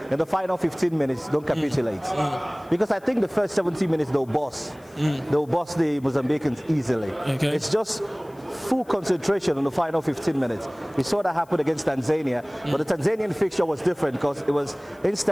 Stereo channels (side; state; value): left; noise; hiss, 30 dB below the sound